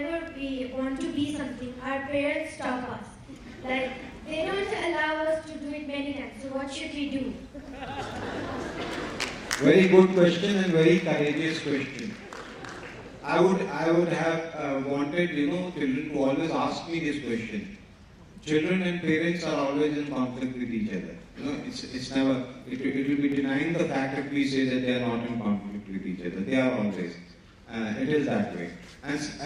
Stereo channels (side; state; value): both; identical; correlation 1.00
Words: we want to be something, our parents stop us. Like, they don't allow us to do it many times. So what should we do? Very good question and very courageous question. I would have wanted, children to always ask me this question. Children and parents are always in conflict with each other. It's never, it will be denying the fact if we say that they are not in conflict with each other. They are always. It is that way.